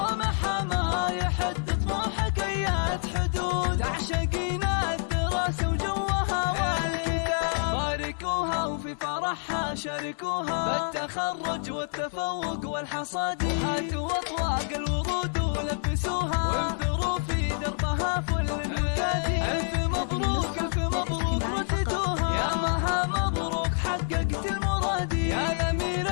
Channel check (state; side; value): silent; right; 60 dB below the other